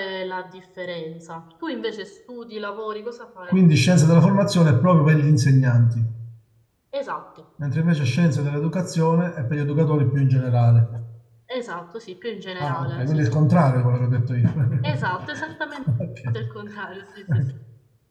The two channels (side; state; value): both; identical; correlation 1.00